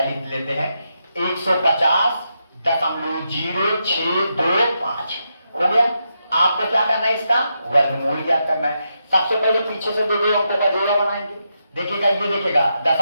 लिख लेते हैं, 150.0625 हो गया। आपको क्या करना है? इसका वर्गमूल ज्ञात करना है। सबसे पहले पीछे से दो अंकों का जोड़ा बनाएंगे। देखिएगा, ये देखिएगा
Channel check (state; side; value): inverted; both; correlation -0.84